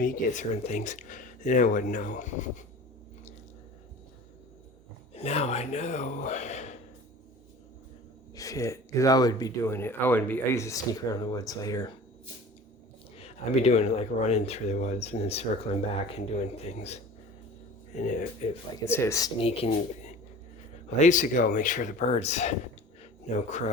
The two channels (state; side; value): normal; both; correlation 0.41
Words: you get certain things, and I wouldn't know. Now I know. Shit, because I would be doing it. I used to sneak around the woods later. I'd be doing it like running through the woods and then circling back and doing things. And if like instead of sneaking, well, I used to go make sure the birds, no